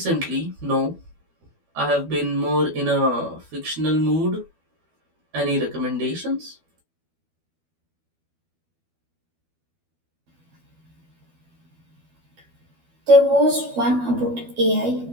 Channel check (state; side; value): late; left; 12 ms